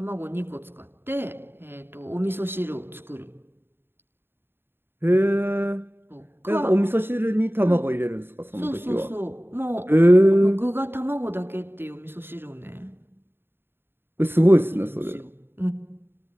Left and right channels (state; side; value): late; left; 0.11 ms